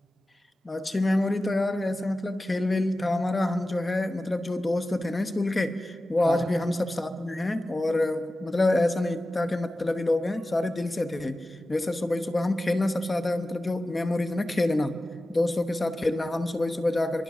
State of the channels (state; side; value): normal; both; correlation 0.95